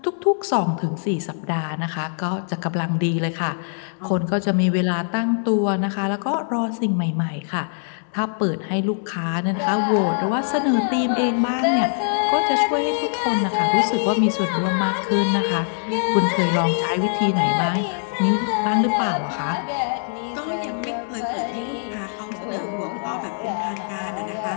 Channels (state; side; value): silent; right; digital silence